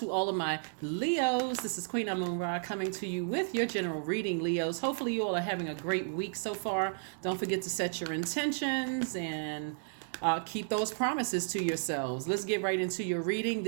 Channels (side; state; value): left; silent; digital silence